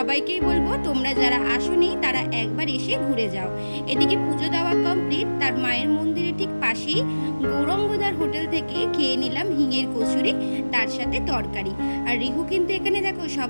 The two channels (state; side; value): inverted; both; correlation -1.00